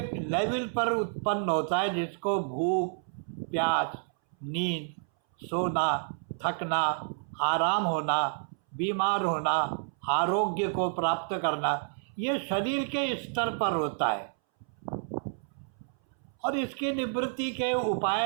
लेवल पर उत्पन्न होता है, जिसको भूख, प्यास, नींद, सोना, थकना, आराम होना, बीमार होना, आरोग्य को प्राप्त करना, ये शरीर के स्तर पर होता है। और इसकी निवृत्ति के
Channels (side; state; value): left; silent; 58 dB below the other